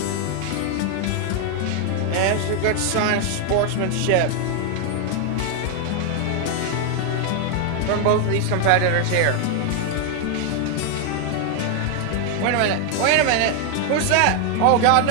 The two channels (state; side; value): different; both; correlation 0.00